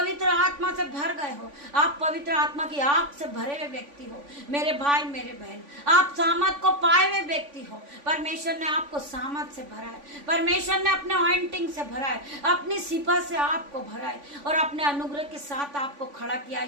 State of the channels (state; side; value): late; left; 3.5 ms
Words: आत्मा से भर गए हो, आप पवित्र आत्मा की आग से भरे हुए व्यक्ति हो। मेरे भाई मेरे बहन, आप सामर्थ को पाए हुए व्यक्ति हो। परमेश्वर ने आपको सामर्थ से भरा है, परमेश्वर ने अपने ऑइंटिंग से भरा है, अपनी सिफा से आपको भरा है और अपने अनुग्रह के साथ आपको खड़ा किया